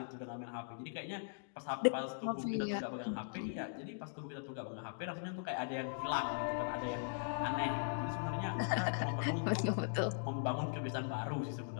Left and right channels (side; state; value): right; silent; digital silence